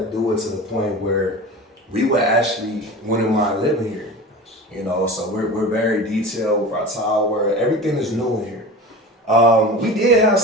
do it to the point where we would actually wouldn't mind living here. You know, so we're very detailed with our tile work. Everything is new in here. We did have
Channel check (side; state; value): both; normal; correlation 0.33